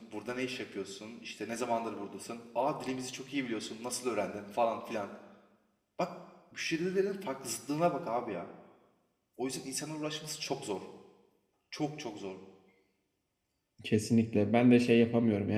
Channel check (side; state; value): both; identical; correlation 1.00